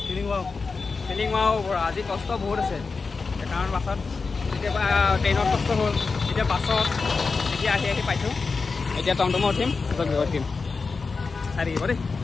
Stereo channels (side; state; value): right; quieter; 4.5 dB